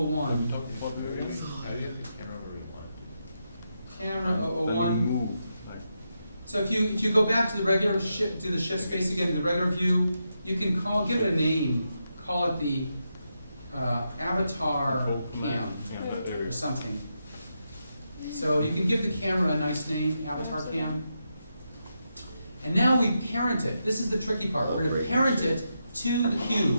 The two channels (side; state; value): both; inverted; correlation -0.84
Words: Camera 001. So if you go back to the regular shift, to the shift space again, the regular view, you can give it a name. Call it the avatar cam or something. So you can give the camera a nice name, avatar cam. And now we parent it. This is the tricky part. We're going to parent it to the